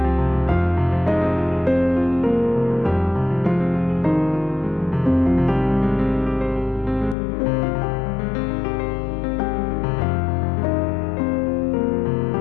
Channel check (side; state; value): right; drops out; at 7.2 s